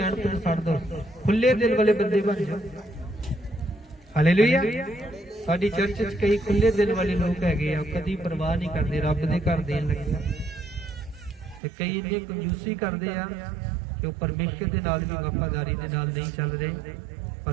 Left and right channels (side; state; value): left; drops out; at 11.6 s